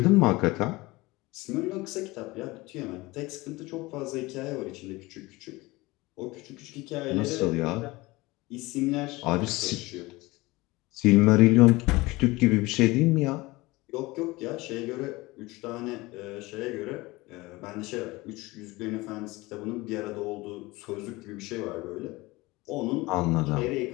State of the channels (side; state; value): right; quieter; 21.5 dB